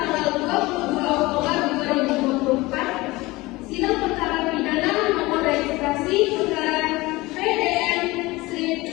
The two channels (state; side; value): quieter; right; 21.0 dB